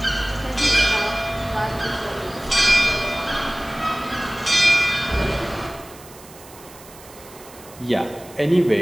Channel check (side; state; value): right; noise; hiss, 20 dB below the sound